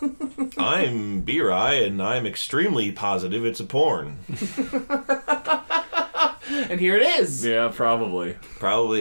I'm B-Rye, and I'm extremely positive it's a porn. And here it is. Yeah, probably.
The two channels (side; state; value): both; inverted; correlation -1.00